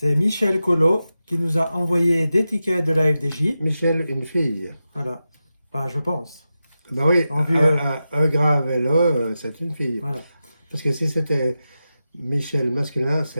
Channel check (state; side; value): inverted; both; correlation -0.92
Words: Michel Collot qui nous a envoyé des tickets de la FDJ. Michel, une fille. Voilà. Bah, je pense. Ben oui, En vue, un grave et là, c'est une fille. Voilà. Parce que si c'était Michel masculin,